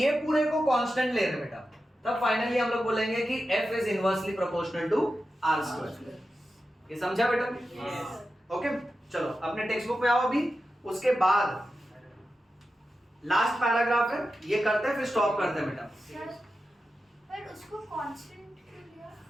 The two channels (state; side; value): normal; both; correlation 0.91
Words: पूरे को कांस्टेंट ले रहे बेटा, तब फाइनली हम लोग बोलेंगे कि f is inversely proportional to r square. ये समझा बेटा? ओके, चलो अपने टेक्स्ट बुक में आओ अभी। उसके बाद लास्ट पैराग्राफ है, ये करते हैं फिर स्टॉप करते हैं बेटा। पर उसको कांस्टेंट क्यों लिया?